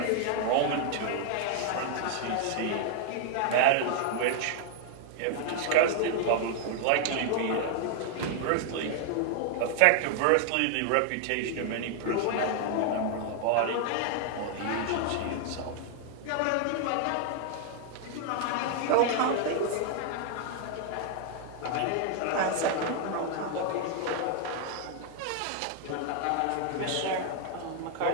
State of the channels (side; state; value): both; different; correlation 0.00